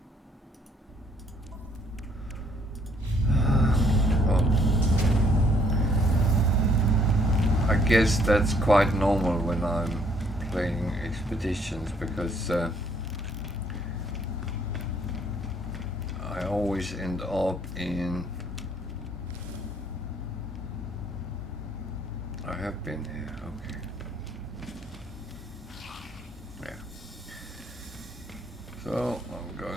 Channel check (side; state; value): both; normal; correlation 0.65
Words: Well, I guess that's quite normal when I'm playing expeditions, because I always end up in... I have been here, okay. Yeah. So I'm